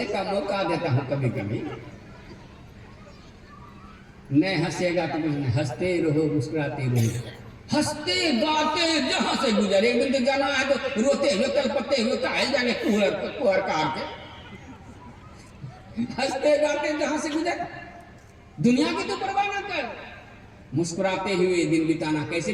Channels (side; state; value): both; identical; correlation 1.00